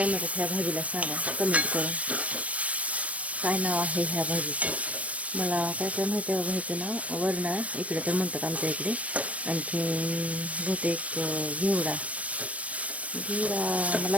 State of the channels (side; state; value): left; late; 0.065 ms